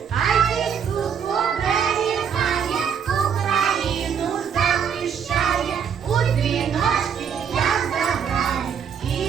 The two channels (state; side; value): quieter; left; 7.5 dB